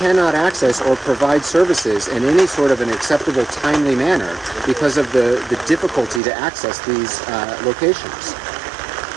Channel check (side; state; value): left; drops out; at 6.2 s